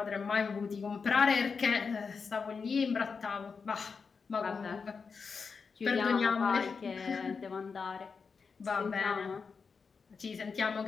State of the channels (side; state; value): right; quieter; 5.3 dB